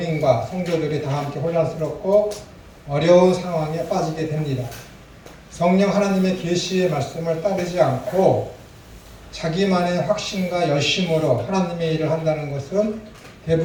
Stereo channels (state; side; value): identical; both; correlation 1.00